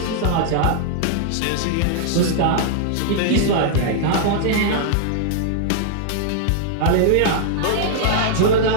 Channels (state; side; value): different; both; correlation -0.01